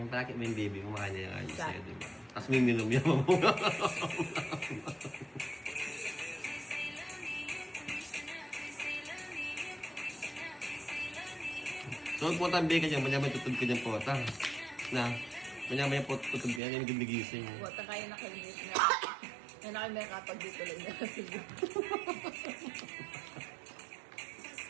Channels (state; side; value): drops out; left; at 16.6 s